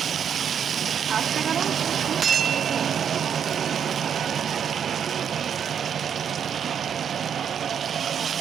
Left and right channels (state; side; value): quieter; left; 8.1 dB